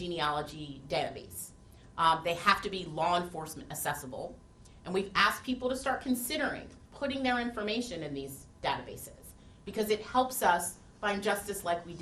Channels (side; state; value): both; identical; correlation 1.00